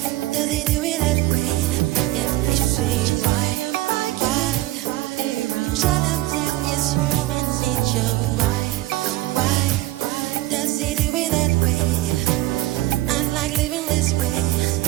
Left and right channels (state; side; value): quieter; left; 17.0 dB